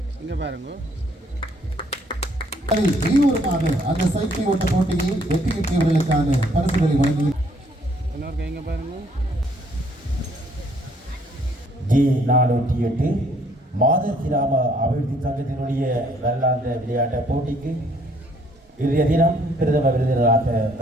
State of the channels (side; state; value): both; normal; correlation 0.64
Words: இங்க பாருங்க. வெளியூருக்கான அந்த சைக்கிள் ஓட்ட போட்டியில் வெற்றி பெற்றவர்களுக்கான பரிசுகளை வழங்கி இங்க பாருங்க. G408 மாதர் கிராம அபிவிருத்தி சங்கத்தினுடைய வருடாந்த விளையாட்டு போட்டிக்கு இன்றைய தினம் பிரதம விருந்தினராக